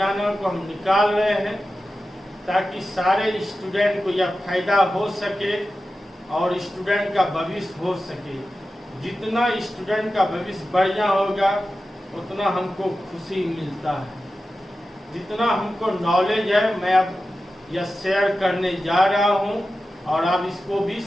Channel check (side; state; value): both; normal; correlation 0.93